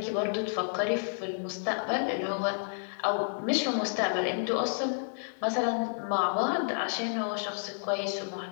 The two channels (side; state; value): right; silent; 57 dB below the other